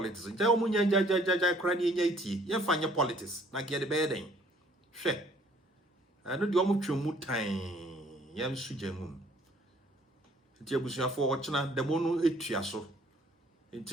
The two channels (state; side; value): normal; both; correlation 0.59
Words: ja omunya ja kura ni enya iti ye fanya politics na ge de be den hwe ano de omo twemu tan yam suje mum it abusuafo wo chena demo no etua so